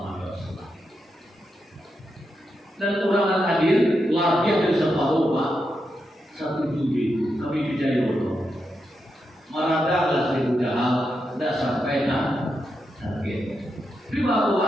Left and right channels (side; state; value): both; normal; correlation 0.85